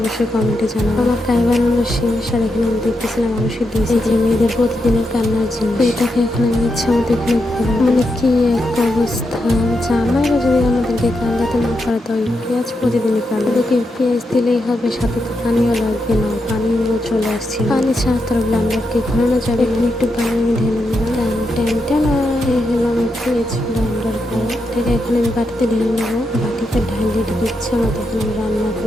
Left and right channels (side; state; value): both; normal; correlation 0.84